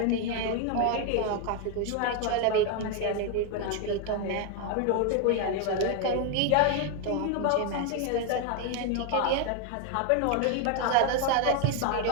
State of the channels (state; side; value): different; both; correlation 0.01